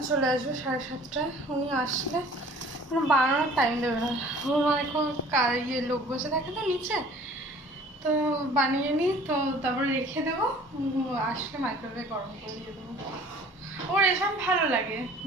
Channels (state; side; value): normal; both; correlation 0.50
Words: চলে আসবে 7:30টায়, উনি আসলে বানানোর টাইম দেবে না। আমার এখন লোক বসে থাকে তো নিচে, তো বানিয়ে নিই, তো তারপরে রেখে দেবো, আসলে মাইক্রোওয়েভে গরম করে দিয়ে দেবো। ওর এসব ভালো লাগে,